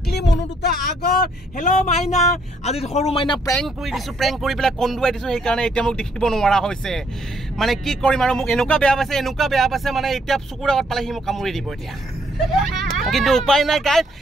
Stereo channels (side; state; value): both; normal; correlation 0.69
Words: মনু দুটা আগত। হেল্ল' মাইনা। আজি সৰু মাইনা প্ৰেংক কৰি দিছো, প্ৰেংক কৰি পেলাই কন্দুৱাই দিছো, সেইকাৰণে এতিয়া মোক দেখিব নোৱাৰা হৈছে। মানে কি কৰিম আৰু মোক এনেকুৱা বেয়া পাইছে মানে এতিয়া চকুৰ আগত পালে সি মোক কামুৰি দিব এতিয়া। কিন্তু উপায় নাই গাইজ,